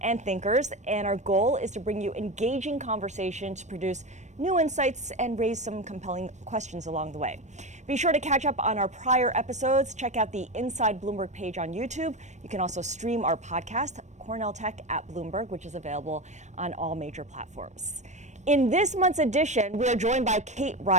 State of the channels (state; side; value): late; left; 0.34 ms